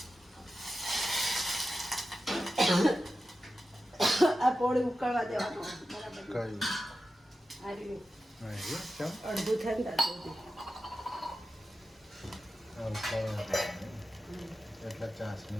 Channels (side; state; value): both; normal; correlation 0.92